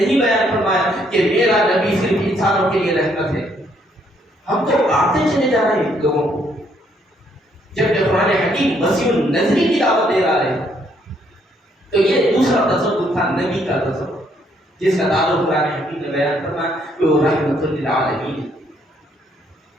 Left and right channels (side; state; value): both; normal; correlation 0.70